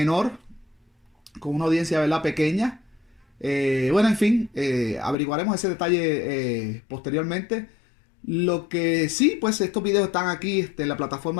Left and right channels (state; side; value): drops out; right; at 5.2 s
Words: con una audiencia, ¿verdad?, pequeña. Bueno, en fin, averiguaremos ese detalle posteriormente. Lo que sí, pues estos videos están aquí en la